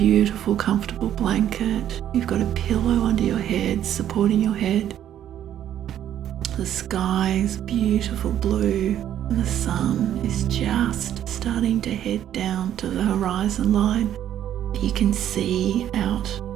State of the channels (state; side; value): quieter; left; 10.9 dB